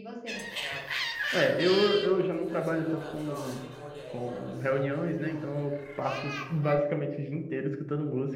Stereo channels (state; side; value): identical; both; correlation 1.00